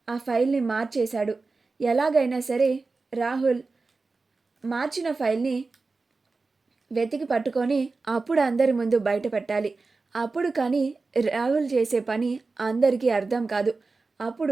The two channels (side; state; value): left; quieter; 3.9 dB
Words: ఆ ఫైల్ని మార్చేశాడు, ఎలాగైనా సరే రాహుల్ మార్చిన ఫైల్ని వెతికి పట్టుకొని అప్పుడు అందరి ముందు బయట పెట్టాలి, అప్పుడు కానీ రాహుల్ చేసే పని అందరికీ అర్థం కాదు,